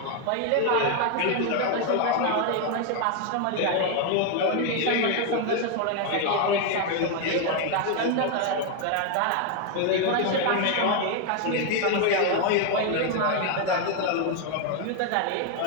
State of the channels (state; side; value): different; both; correlation 0.01